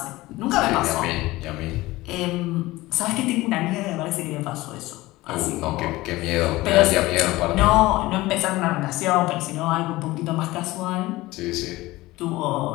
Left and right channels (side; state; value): right; quieter; 19.0 dB